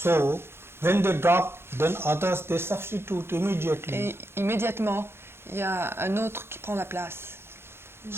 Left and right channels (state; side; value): late; left; 0.12 ms